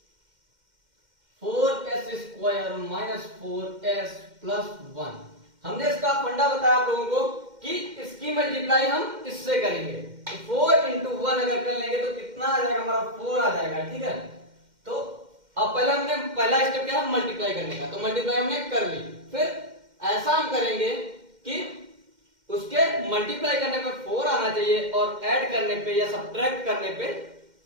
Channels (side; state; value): left; late; 2.1 ms